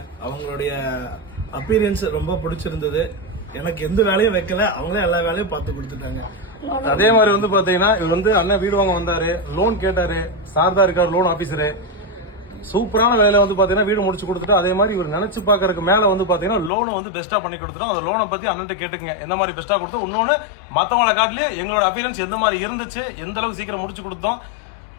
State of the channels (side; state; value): right; drops out; at 16.7 s